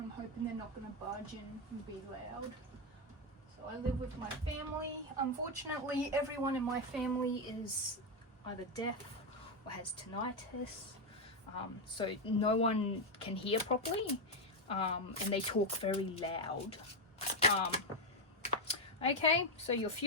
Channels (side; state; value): both; normal; correlation 0.06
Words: hoping they're not going to barge in and be loud. So I live with my family. Unfortunately, everyone in my family is either deaf or has tinnitus. So no one can hear properly. And they talk very loud. Okay, so your